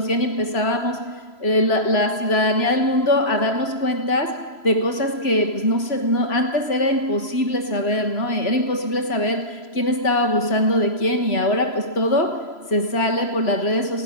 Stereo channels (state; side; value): late; right; 3.0 ms